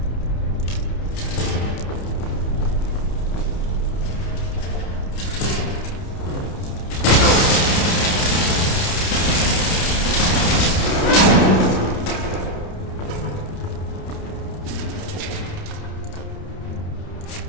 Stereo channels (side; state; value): right; late; 29 ms